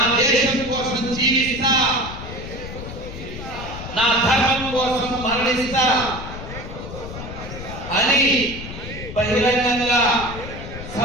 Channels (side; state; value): left; noise; rumble, 10 dB below the sound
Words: దేశం కోసం జీవిస్తా, నా ధర్మం కోసం మరణిస్తా అని బహిరంగంగా